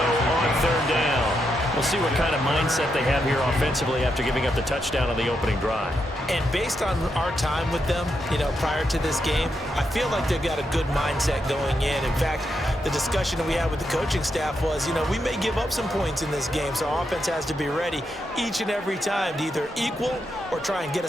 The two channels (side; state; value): both; normal; correlation 0.82